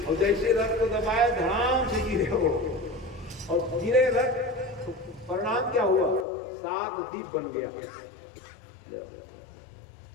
और जैसे रथ को दबाया धड़ाम से गिरे वो, और गिरे रथ तो परिणाम क्या हुआ? 7 दीप बन गया।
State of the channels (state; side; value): drops out; right; at 6.2 s